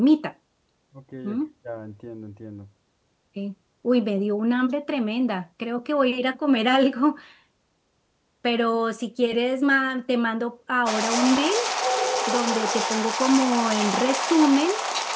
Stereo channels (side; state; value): both; identical; correlation 1.00